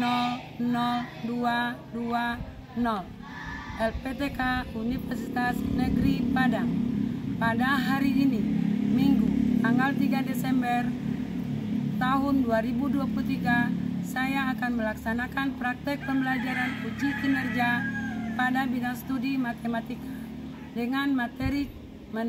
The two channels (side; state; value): both; identical; correlation 1.00